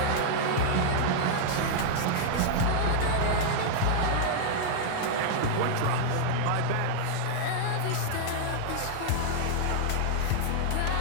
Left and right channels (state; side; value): different; both; correlation -0.01